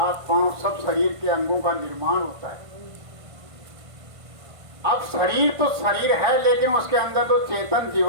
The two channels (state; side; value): late; left; 1.5 ms